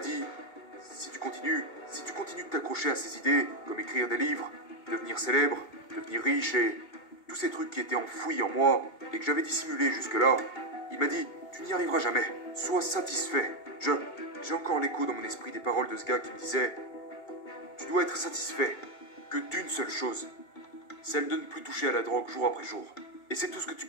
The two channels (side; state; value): right; late; 2.5 ms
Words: si tu continues de t'accrocher à ces idées, comme écrire des livres, devenir célèbre, devenir riche et tous ces trucs qui étaient enfouis en moi et que j'avais dissimulés jusque-là, il m'a dit, tu n'y arriveras jamais, sois satisfait. J'ai encore l'écho dans mon esprit des paroles de ce gars qui me disait, tu dois être satisfait que d'une seule chose, celle de ne plus toucher à la drogue jour après jour. Et c'est tout ce que tu